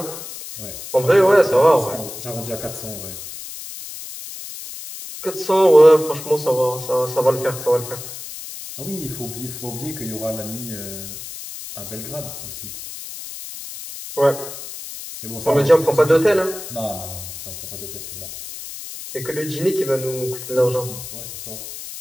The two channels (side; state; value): left; noise; hiss, 11 dB below the sound